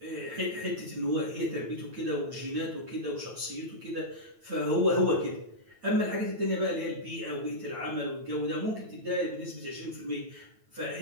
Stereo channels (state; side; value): late; left; 9.1 ms